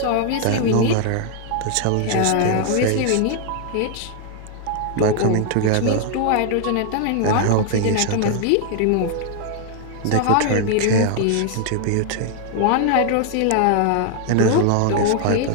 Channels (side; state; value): both; different; correlation 0.00